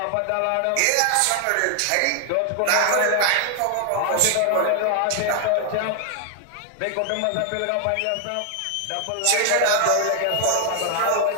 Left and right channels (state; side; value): different; both; correlation 0.00